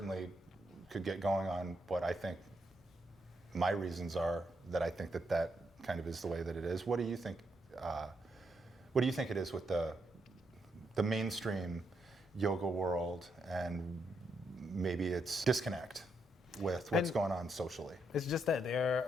could get going on what I think my reasons are that I think that kind of is the way that it is. What do you think? What do you think it is with the mainstream yoga world, and maybe it's disconnect with what's going on socially? It's just that they're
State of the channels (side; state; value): both; normal; correlation 0.79